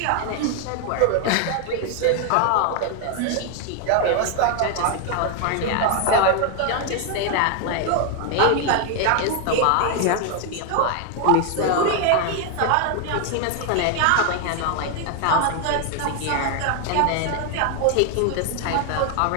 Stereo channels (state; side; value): different; both; correlation 0.00